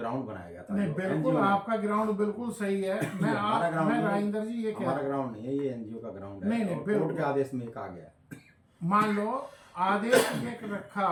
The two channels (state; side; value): identical; both; correlation 1.00